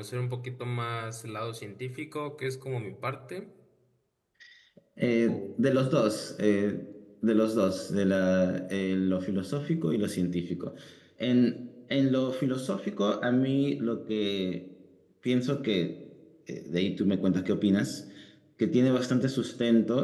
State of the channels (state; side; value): identical; both; correlation 1.00